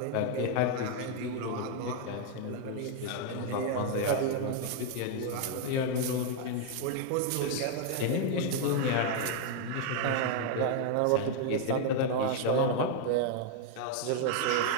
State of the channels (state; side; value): different; both; correlation 0.00